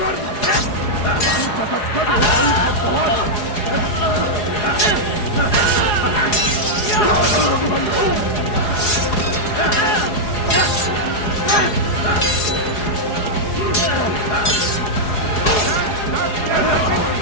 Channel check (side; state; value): right; late; 4.8 ms